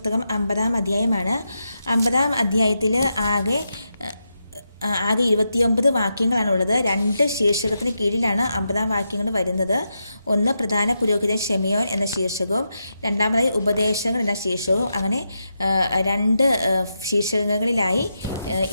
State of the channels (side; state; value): both; inverted; correlation -0.86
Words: 50-ാം അധ്യായമാണ്. 50-ാം അധ്യായത്തിൽ ആകെ 29 വാക്യങ്ങളാണുള്ളത്. 2 ശീർഷകത്തിന് കീഴിലാണ് 50-ാം വാക്യങ്ങൾ വരുന്നത്. ഒന്ന് പ്രധാന പുരോഹിതൻ ഷെമിയോൻ എന്ന ശീർഷകവും രണ്ടാമതായി ഉപദേശങ്ങൾ എന്ന ശീർഷകവും. അങ്ങനെ 2 ശീർഷകങ്ങളിലായി